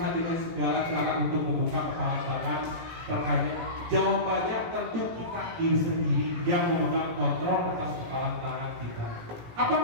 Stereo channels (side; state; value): left; late; 18 ms